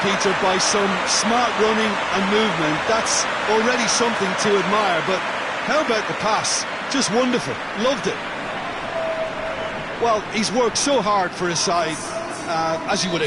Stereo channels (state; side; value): identical; both; correlation 1.00